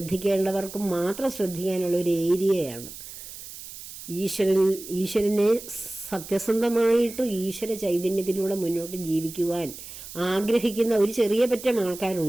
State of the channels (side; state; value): right; noise; hiss, 13 dB below the sound